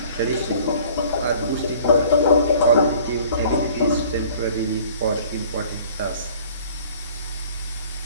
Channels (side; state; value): both; inverted; correlation -0.51